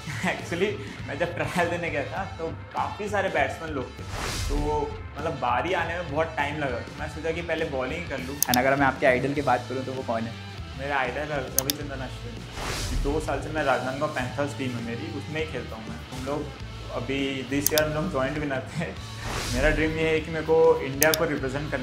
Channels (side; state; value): both; identical; correlation 1.00